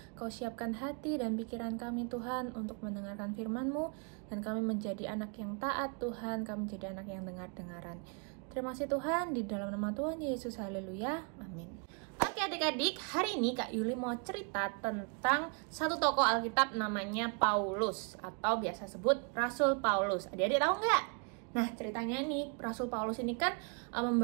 Kau siapkan hati dan pikiran kami Tuhan untuk mendengarkan firman-Mu, dan kami menjadi anak yang taat Tuhan, kami menjadi anak yang dengar-dengaran. Terima kasih Tuhan, di dalam nama Tuhan Yesus, haleluya, amin. Oke adik-adik, hari ini Kak Yuli mau cerita tentang satu tokoh Alkitab namanya Paulus, atau biasa sebut Rasul Paulus. Adik-adik tahu nggak? Nah, ceritanya nih, Rasul Paulus ini kan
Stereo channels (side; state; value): left; quieter; 37.1 dB